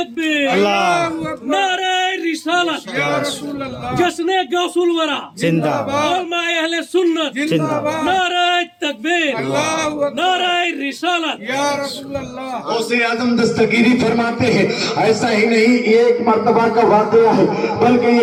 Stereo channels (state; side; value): identical; both; correlation 1.00